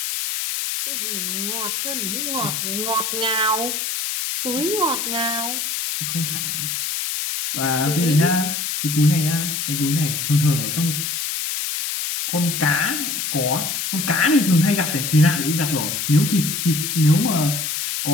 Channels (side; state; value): left; noise; hiss, 2 dB below the sound